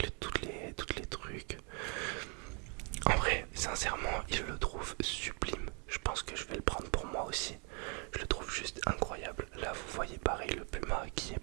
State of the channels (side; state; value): left; quieter; 35.9 dB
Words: toutes les trucs. En vrai, sincèrement, je le trouve sublime. Je pense que je vais le prendre pour moi aussi. Je le trouve juste incroyable. Là, vous voyez pareil le puma qui